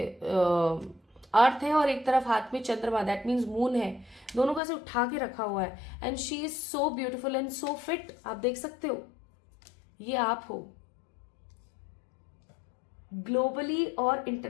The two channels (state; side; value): drops out; right; at 4.6 s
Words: अर्थ है और एक तरफ हाथ में चंद्रमा, दैट मीन्स मून है, दोनों का से उठा के रखा हुआ है। And she is so beautiful and so fit, आप देख सकते हो, ये आप हो। ग्लोबली और